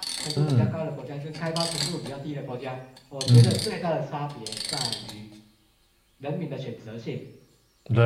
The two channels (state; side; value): identical; both; correlation 1.00